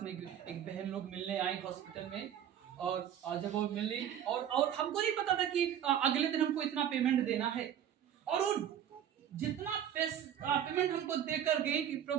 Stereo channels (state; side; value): quieter; left; 9.9 dB